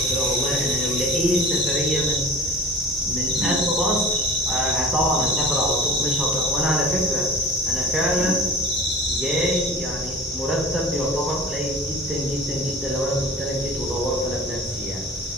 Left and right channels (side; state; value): both; normal; correlation 0.39